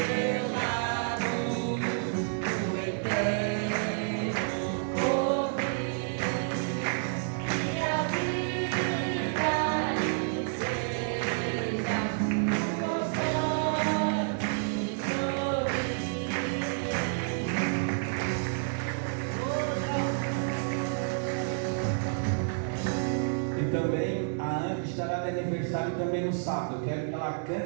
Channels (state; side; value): silent; left; digital silence